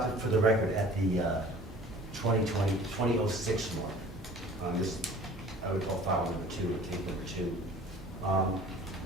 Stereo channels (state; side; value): normal; both; correlation 0.47